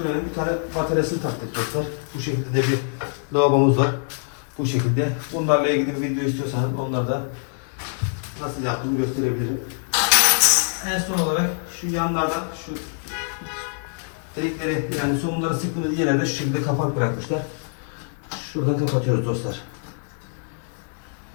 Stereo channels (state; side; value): silent; right; 63 dB below the other